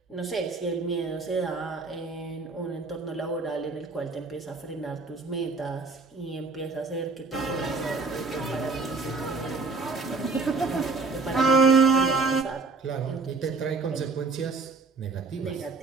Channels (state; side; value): quieter; left; 4.1 dB